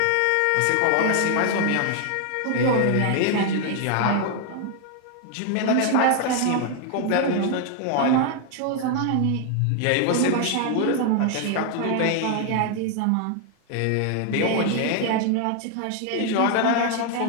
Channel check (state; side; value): different; both; correlation 0.00